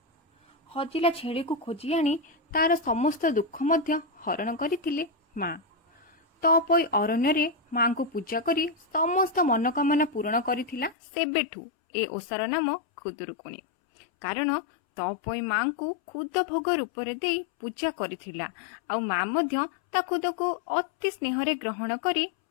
हजिला छेड़ी को खोजी आनी तार समस्त दुख मध्य हरण करथिले मां। तपोई अरण्य रे मां को पूजा करी समस्त मनोकामना पूर्ण करिथिला। सेबेठू ए ओसार नाम खुदुरुकुणी। कारण तपोई मां को खुद भोग रूप रे देई पूजा करिथिला। आ मां मध्य ता खुद को अति स्नेह रे ग्रहण करी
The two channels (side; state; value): right; drops out; at 11.0 s